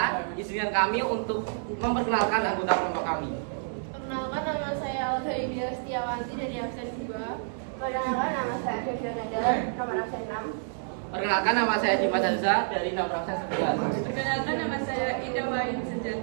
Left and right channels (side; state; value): left; silent; digital silence